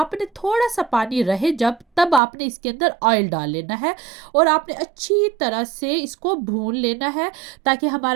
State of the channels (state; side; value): drops out; left; at 2.2 s